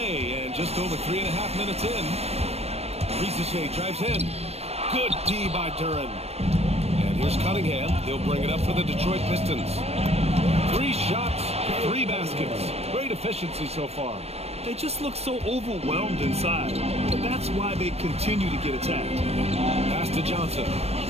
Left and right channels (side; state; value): left; late; 0.30 ms